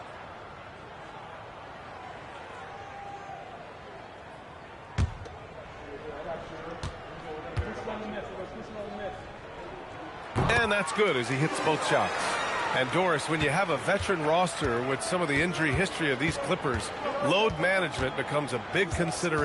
And that's good as he hits both shots. And Doris, when you have a veteran roster with some of the injury history of these Clippers, load management becomes a big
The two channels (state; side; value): identical; both; correlation 1.00